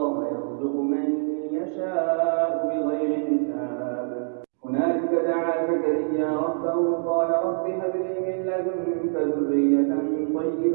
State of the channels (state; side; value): silent; left; digital silence